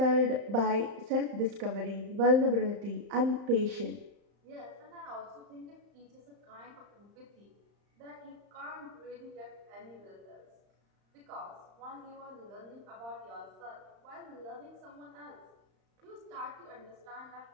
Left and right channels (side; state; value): left; late; 35 ms